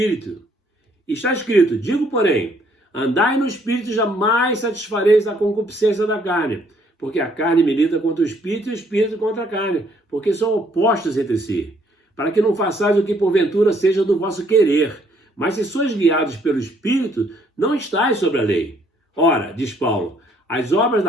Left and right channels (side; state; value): both; normal; correlation 0.66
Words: Está escrito: digo, porém, andai no Espírito e jamais satisfareis a concupiscência da carne, porque a carne milita contra o Espírito e o Espírito contra a carne, porque são opostos entre si, para que não façais o que porventura seja do vosso querer. Mas se sois guiados pelo Espírito, não estáis sobre a lei. Ora, diz Paulo, as obras